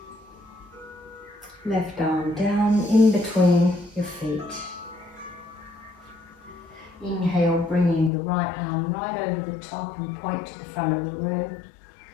Left arm down in between your feet. Inhale, bringing the right arm right over the top and point to the front of the room.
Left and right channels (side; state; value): right; drops out; at 8.1 s